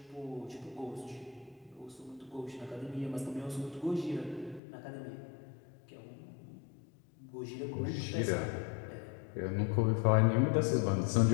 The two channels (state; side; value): drops out; right; at 4.6 s